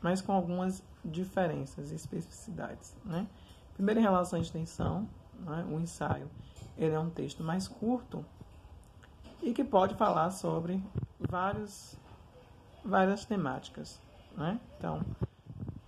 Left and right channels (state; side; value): identical; both; correlation 1.00